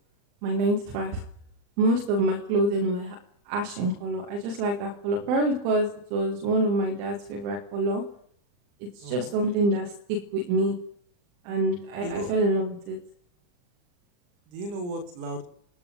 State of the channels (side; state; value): left; late; 40 ms